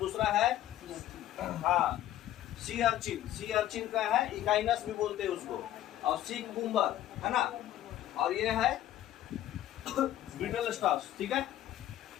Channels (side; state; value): right; quieter; 12.9 dB